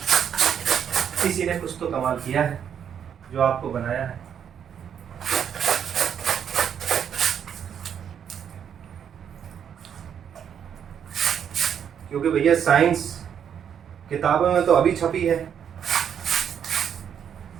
किसी ने कुछ तो कमाल किया है जो आपको बनाया है। क्योंकि भैया साइंस किताबों में तो अभी छपी है,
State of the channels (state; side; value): quieter; left; 8.4 dB